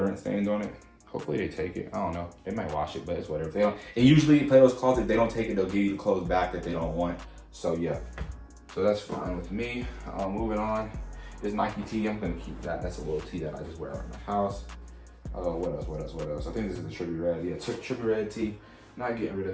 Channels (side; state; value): both; identical; correlation 1.00